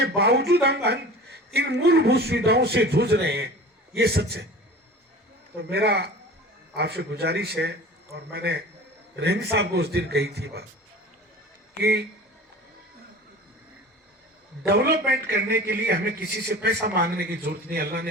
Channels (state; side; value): normal; both; correlation 0.39